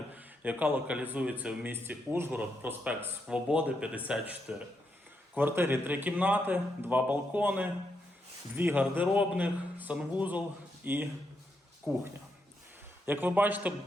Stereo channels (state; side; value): normal; both; correlation 0.81